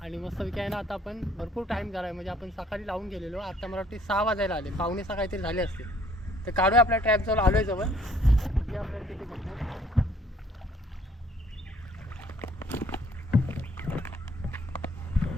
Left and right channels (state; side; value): normal; both; correlation 0.61